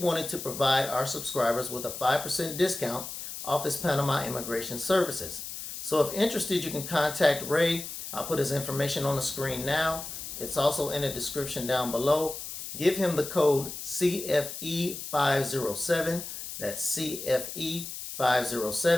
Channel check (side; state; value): left; noise; hiss, 8 dB below the sound